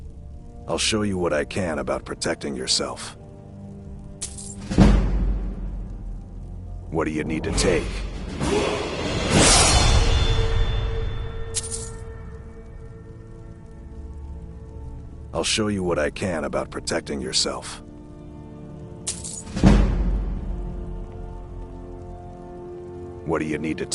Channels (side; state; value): both; identical; correlation 1.00